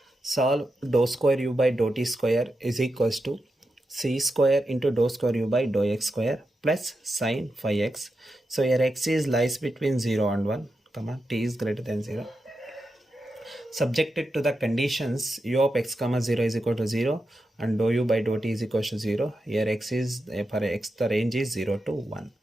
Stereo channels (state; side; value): normal; both; correlation 0.88